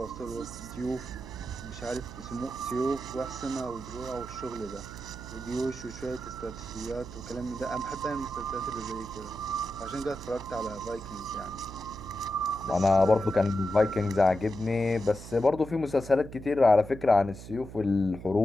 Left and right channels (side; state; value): right; noise; hum, 13 dB below the sound